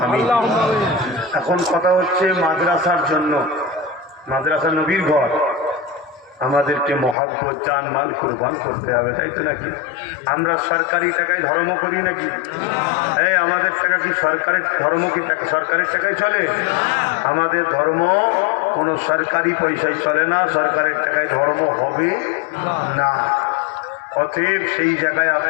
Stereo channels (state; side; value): drops out; right; at 7.2 s